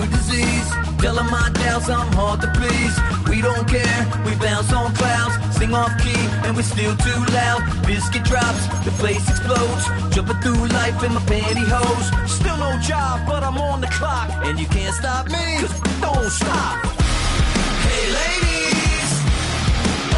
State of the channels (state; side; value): identical; both; correlation 1.00